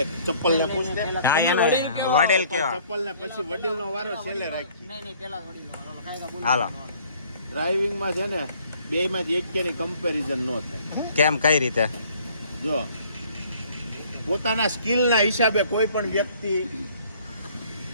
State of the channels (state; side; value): inverted; both; correlation -0.58